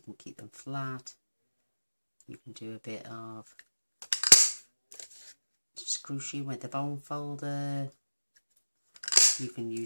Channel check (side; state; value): both; inverted; correlation -1.00